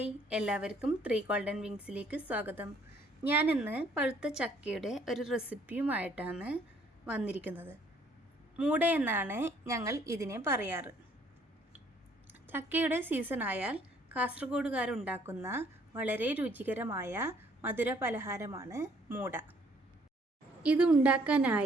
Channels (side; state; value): both; normal; correlation 0.63